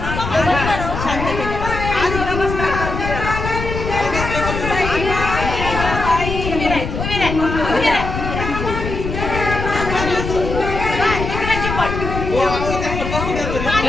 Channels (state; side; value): noise; left; rumble, 5 dB below the sound